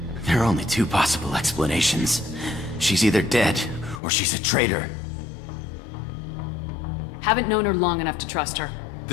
There are only two possible explanations. She's either dead, or she's a traitor. Haven't known her long enough to trust her.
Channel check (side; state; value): right; drops out; at 4.0 s